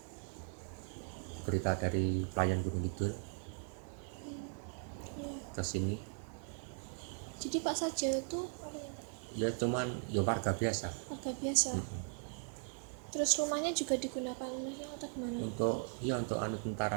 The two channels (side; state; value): left; silent; 52 dB below the other